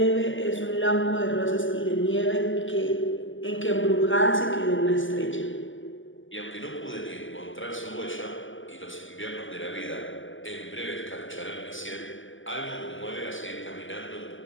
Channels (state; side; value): late; right; 0.57 ms